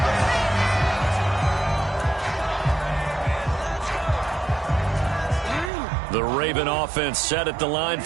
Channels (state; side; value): drops out; left; at 5.7 s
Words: The Raven offense set at the line